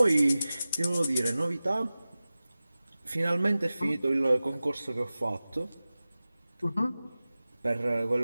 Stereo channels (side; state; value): both; inverted; correlation -0.96